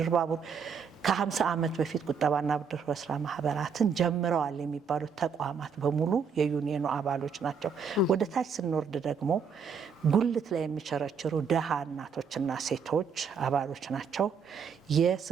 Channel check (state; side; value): quieter; left; 6.1 dB